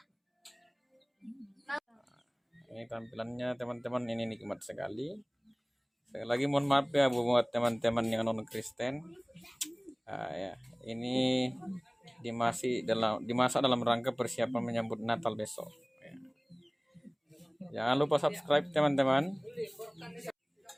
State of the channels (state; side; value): identical; both; correlation 1.00